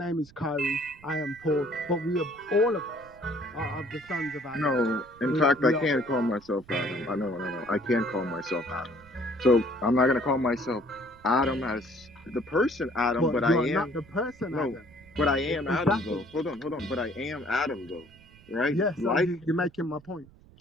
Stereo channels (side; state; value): right; noise; rumble, 25 dB below the sound